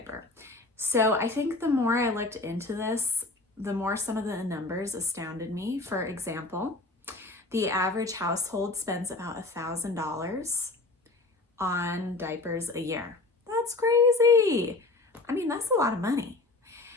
So I think the more I looked into this, the more some of the numbers astounded me. For example, the average household spends about $1,000 on diapers a year. That's crazy. I mean, that's a lot of money.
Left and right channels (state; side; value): quieter; right; 3.2 dB